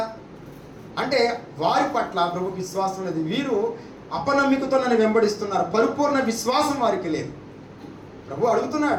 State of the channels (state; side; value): identical; both; correlation 1.00